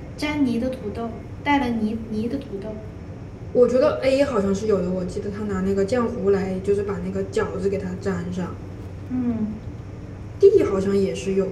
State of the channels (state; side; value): identical; both; correlation 1.00